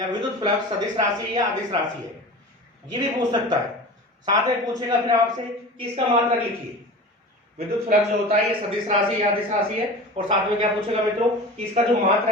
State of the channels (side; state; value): both; normal; correlation 0.34